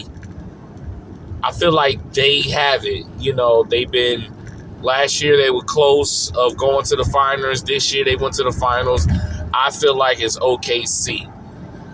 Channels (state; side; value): identical; both; correlation 1.00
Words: I feel like they have it. They've been, last year they were close of going to the finals. This year they went to the finals. I feel like it's OKC.